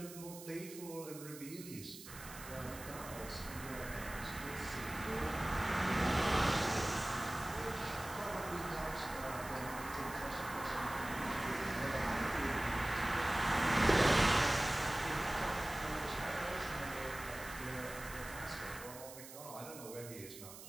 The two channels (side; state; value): right; noise; hiss, 14 dB below the sound